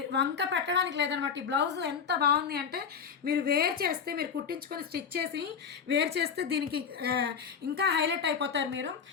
వంక పెట్టడానికి లేదనమాట. ఈ బ్లౌజ్ ఎంత బాగుంది అంటే మీరు వేర్ చేస్తే, మీరు కుట్టించుకొని స్టిచ్ చేసి వేర్ చేస్తే దీనికి ఇంకా హైలైట్ అయిపోతారు మీరు.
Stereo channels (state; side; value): quieter; right; 6.6 dB